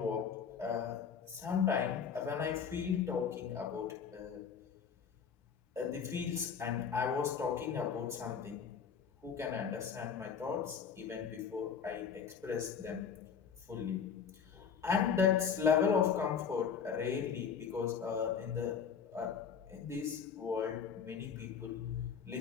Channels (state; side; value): quieter; right; 6.8 dB